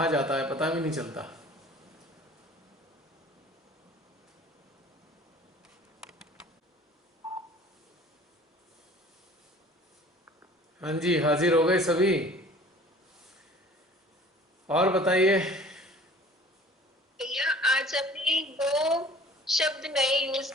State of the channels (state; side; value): normal; both; correlation 0.48